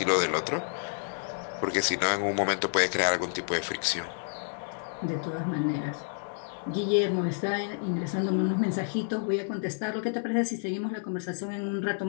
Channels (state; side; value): silent; right; 58 dB below the other